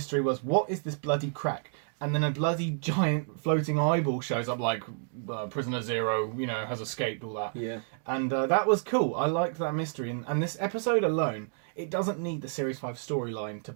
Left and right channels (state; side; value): silent; left; 58 dB below the other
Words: was, what is this bloody crack? and then a bloody giant floating eyeball shows up, like Prisoner Zero, has escaped, all that. Yeah. And that was cool. I liked that mystery, and this episode alone, it doesn't need the Series 5 storyline to